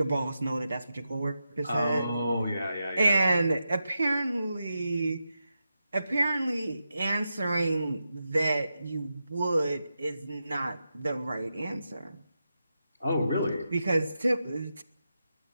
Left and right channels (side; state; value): both; inverted; correlation -0.88